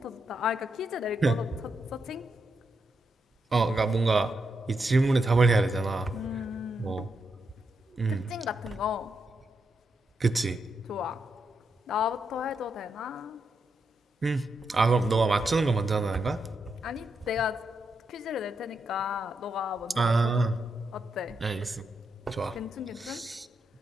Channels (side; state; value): both; normal; correlation 0.83